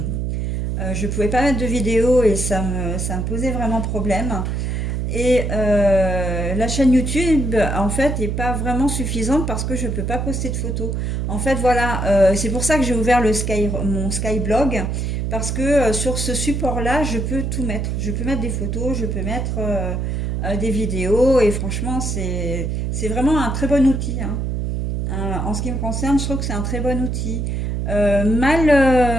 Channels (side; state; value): right; noise; hum, 1 dB below the sound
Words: je ne pouvais pas mettre de vidéos et ça me posait vraiment problème. Et la chaîne YouTube, en fait, n'est pas vraiment suffisante parce que je ne peux pas poster de photos. En fait, voilà, c'est pour ça que j'ai ouvert mon Skyblog, parce que sur ce support-là, je peux tout mettre. Je peux mettre des photos, je peux mettre des vidéos, et franchement, c'est vraiment un très bon outil, hein. En ce qui me concerne, je trouve que c'est un très bon outil.